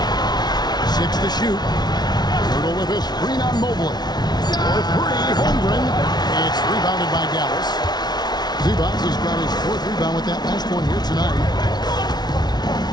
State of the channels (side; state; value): right; late; 0.20 ms